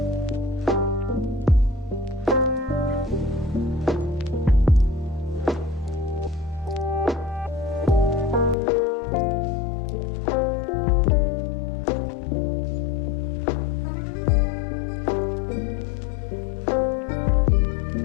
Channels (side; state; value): right; drops out; at 8.6 s